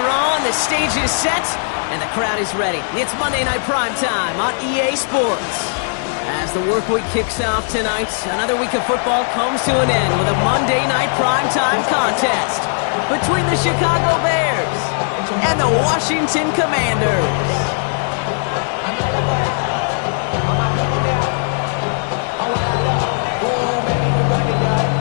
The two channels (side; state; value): right; silent; digital silence